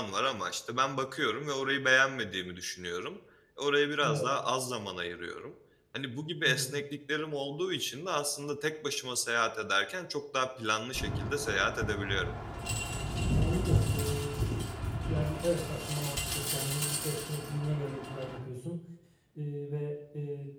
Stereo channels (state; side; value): identical; both; correlation 1.00